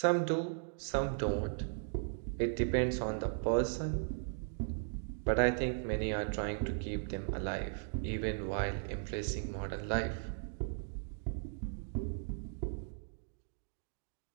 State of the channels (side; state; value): left; silent; digital silence